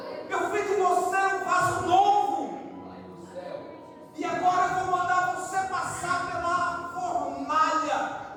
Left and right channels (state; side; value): identical; both; correlation 1.00